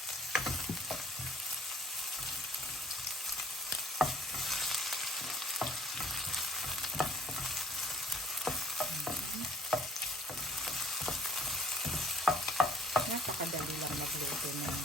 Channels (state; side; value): normal; both; correlation 0.57